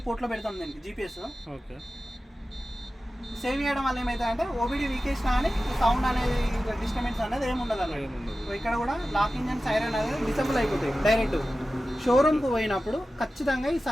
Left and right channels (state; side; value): normal; both; correlation 0.94